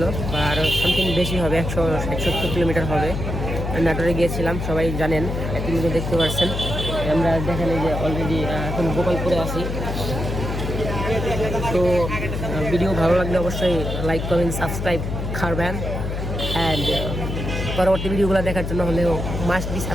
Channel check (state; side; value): noise; left; hum, 4 dB below the sound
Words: বা আরও সামথিং বেশি হবে, 170 কিলোমিটার হবে। নাটোরে গিয়েছিলাম, সবাই জানেন, কিন্তু দেখতে পাচ্ছেন আমরা দেখেন এই যে অলরেডি এখন গোপালপুরে আছি। তো ভিডিও ভালো লাগলে অবশ্যই লাইক কমেন্ট সাবস্ক্রাইব করবেন, অ্যান্ড পরবর্তী ভিডিওগুলো দেখার জন্য হলেও মাস্ট বি